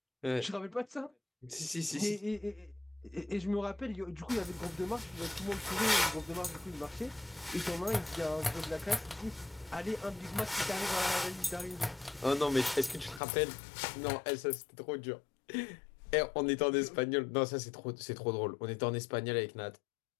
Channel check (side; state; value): right; drops out; at 13.2 s